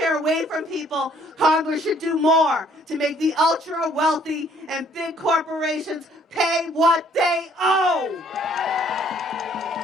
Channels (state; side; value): normal; both; correlation 0.62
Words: away from people, Congress should do more to make the ultra-wealthy and big corporations pay what they owe.